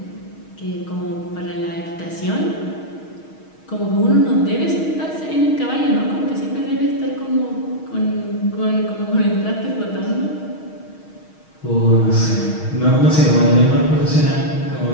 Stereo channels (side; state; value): right; late; 6.4 ms